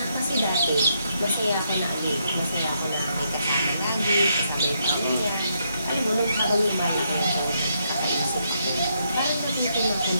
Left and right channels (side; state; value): both; inverted; correlation -0.77